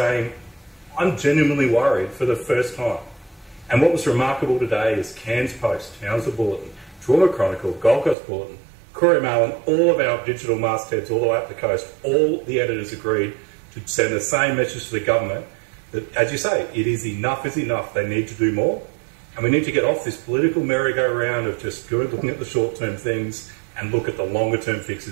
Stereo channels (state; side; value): drops out; left; at 8.2 s